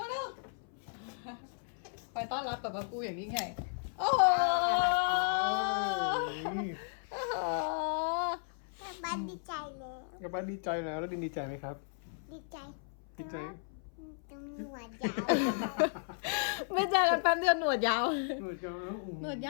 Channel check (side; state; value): right; silent; 55 dB below the other